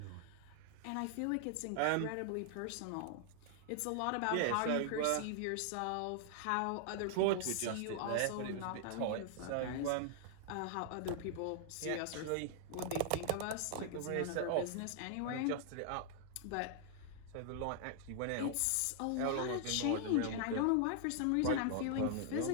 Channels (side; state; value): both; different; correlation -0.01